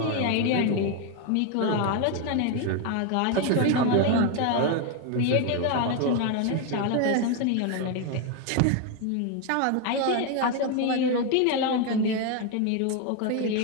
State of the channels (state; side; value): different; both; correlation 0.01